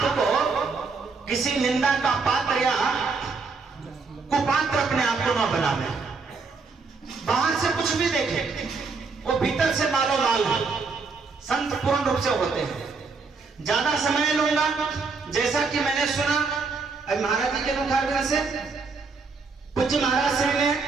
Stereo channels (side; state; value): left; quieter; 4.6 dB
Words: को किसी निंदा का पात्र या कुपात्र अपने आप को न बनावे। बाहर से कुछ भी देखे, वो भीतर से मालो माल है। संत पूर्ण रूप से होते हैं। ज्यादा समय लूंगा, जैसा कि मैंने सुना अब महाराज जी के मुखारबिंद से, पूज्य महाराज श्री ने